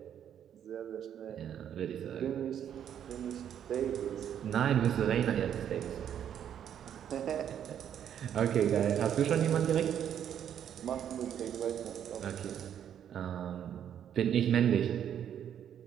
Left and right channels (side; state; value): left; quieter; 9.5 dB